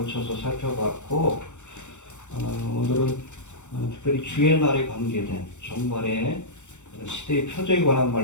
살펴봤고, 오늘은 특별히 주의 날에 관계된 종말의 시대의 표적에 관한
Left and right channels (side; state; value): right; late; 0.84 ms